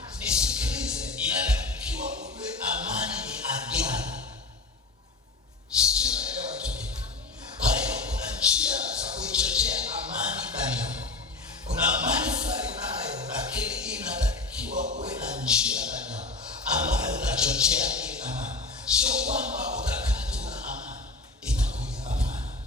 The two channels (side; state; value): right; quieter; 3.5 dB